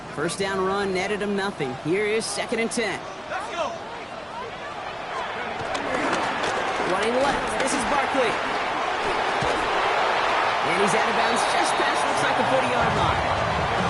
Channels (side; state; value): both; identical; correlation 1.00